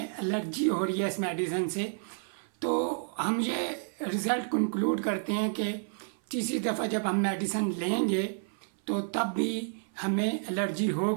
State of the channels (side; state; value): left; silent; 57 dB below the other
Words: एलर्जी हो रही है इस मेडिसिन से, तो हम ये रिज़ल्ट कंक्लूड करते हैं कि तीसरी दफ़ा जब हम मेडिसिन लेंगे तो तब भी हमें एलर्जी